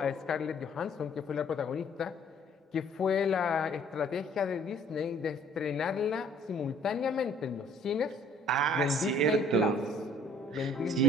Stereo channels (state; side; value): normal; both; correlation 0.56